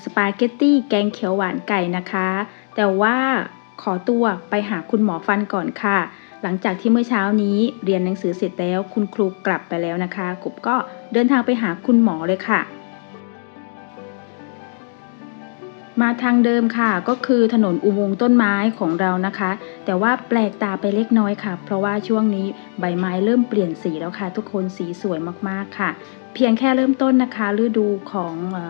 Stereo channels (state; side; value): silent; right; digital silence